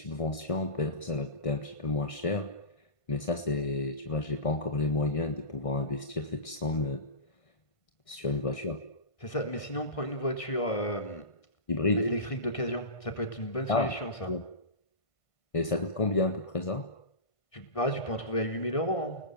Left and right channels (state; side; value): late; right; 1.6 ms